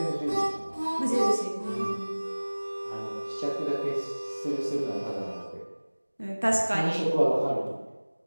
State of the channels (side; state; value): both; inverted; correlation -1.00